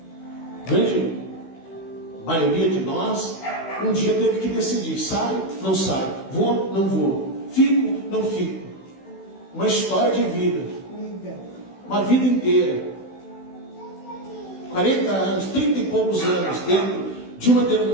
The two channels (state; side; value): late; right; 16 ms